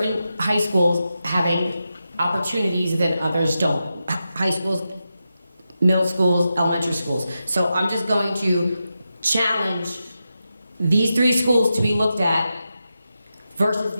high schools having opportunities that others don't. High schools, middle schools, elementary schools. So I'm just going to challenge these 3 schools to be looked at versus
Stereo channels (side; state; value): both; inverted; correlation -0.89